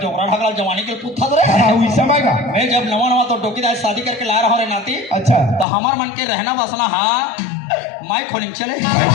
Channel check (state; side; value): drops out; right; at 5.7 s